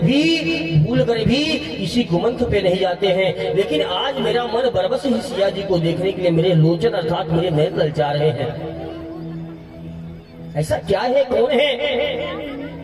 भूल कर भी किसी कुमंथ पे नहीं जाते हैं। लेकिन आज मेरा मन बरबस ही सिया जी को देखने के लिए मेरे लोचन अर्थात मेरे नयन ललचा रहे हैं। ऐसा क्या है, कौन है?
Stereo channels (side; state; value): both; identical; correlation 1.00